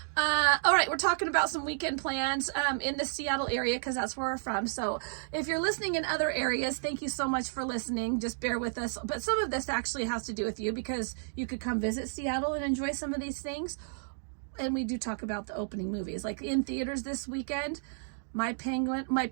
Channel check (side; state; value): left; silent; digital silence